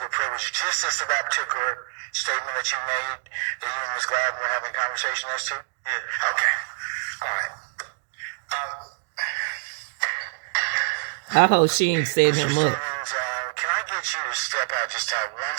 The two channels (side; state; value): left; silent; digital silence